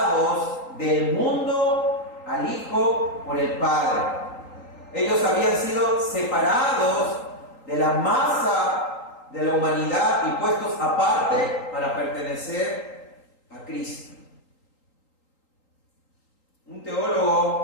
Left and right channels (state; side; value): late; right; 3.8 ms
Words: del mundo al Hijo por el Padre. Ellos habían sido separados de la masa de la humanidad y puestos aparte para pertenecer a Cristo. Un